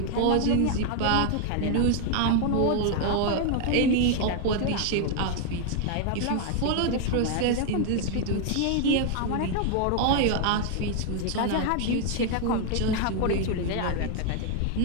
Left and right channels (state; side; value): different; both; correlation 0.00